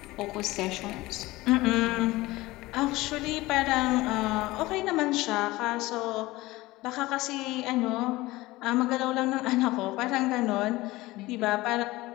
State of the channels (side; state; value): right; quieter; 19.5 dB